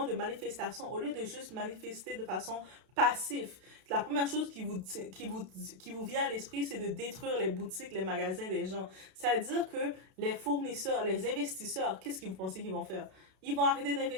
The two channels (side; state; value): left; late; 32 ms